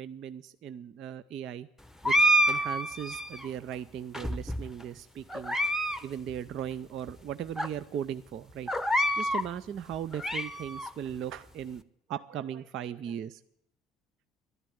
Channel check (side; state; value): both; normal; correlation 0.66